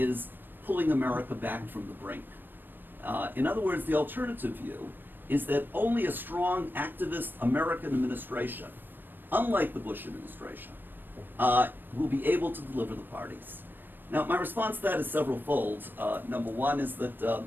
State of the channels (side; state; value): left; late; 0.094 ms